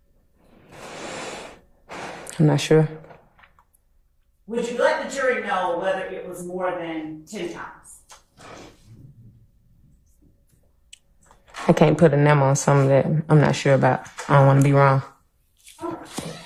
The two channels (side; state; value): both; identical; correlation 1.00